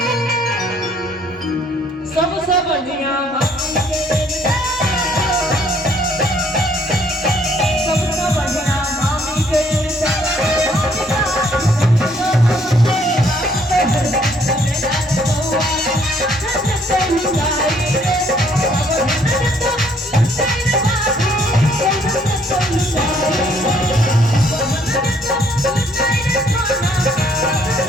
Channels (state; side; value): normal; both; correlation 0.65